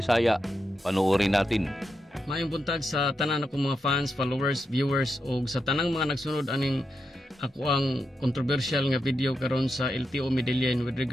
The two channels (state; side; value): normal; both; correlation 0.86